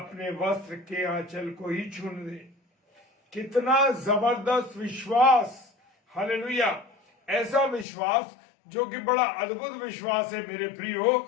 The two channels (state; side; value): drops out; right; at 7.9 s